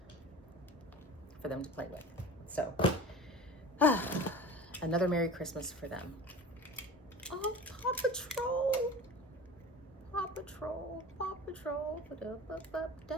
for them to play with. So, another Merry Christmas for them. Oh, Paw Patrol. Paw Patrol. Paw Patrol.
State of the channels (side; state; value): both; normal; correlation 0.36